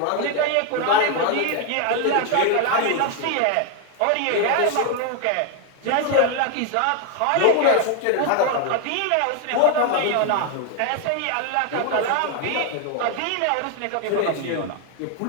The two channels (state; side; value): different; both; correlation 0.01